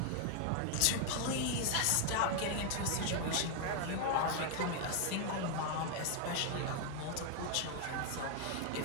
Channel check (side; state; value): both; different; correlation 0.00